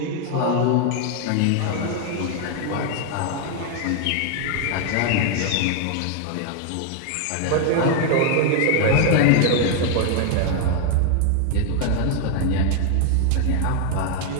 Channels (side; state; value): both; different; correlation 0.00